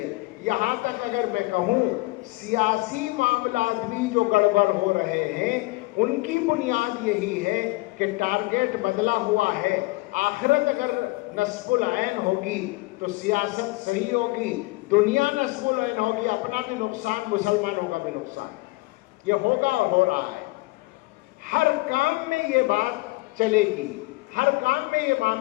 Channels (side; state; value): right; quieter; 22.7 dB